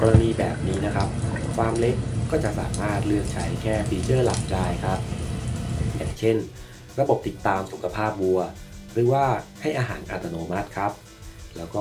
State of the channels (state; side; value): identical; both; correlation 1.00